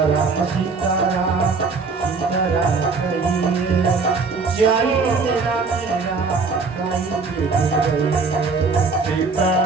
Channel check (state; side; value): quieter; left; 4.4 dB